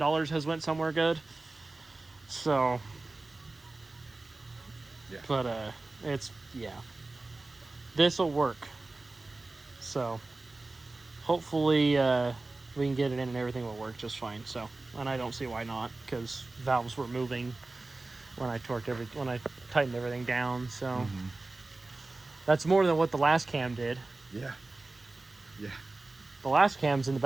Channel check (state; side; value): quieter; left; 3.2 dB